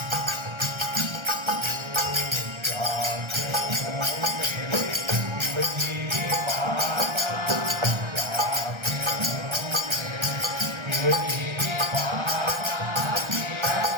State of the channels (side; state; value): left; late; 1.3 ms